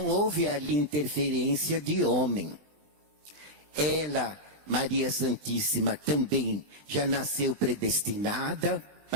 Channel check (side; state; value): left; late; 20 ms